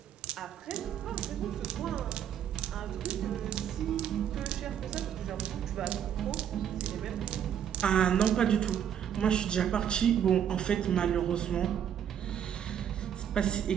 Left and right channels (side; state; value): left; quieter; 9.2 dB